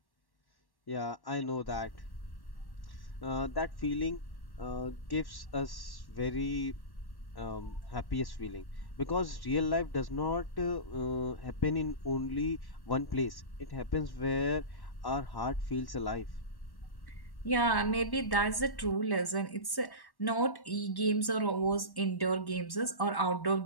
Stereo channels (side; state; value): right; late; 1.1 ms